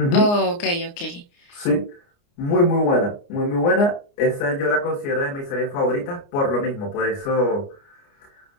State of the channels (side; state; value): right; late; 29 ms